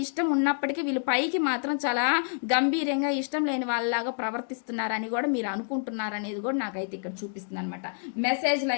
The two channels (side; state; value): right; silent; digital silence